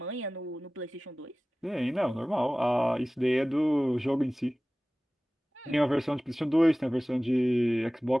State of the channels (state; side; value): normal; both; correlation 0.97